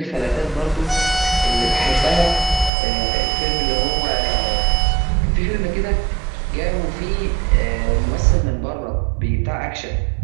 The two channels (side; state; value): left; drops out; at 2.7 s